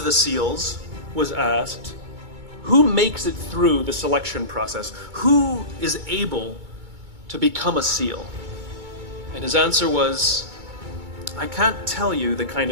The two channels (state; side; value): late; left; 2.2 ms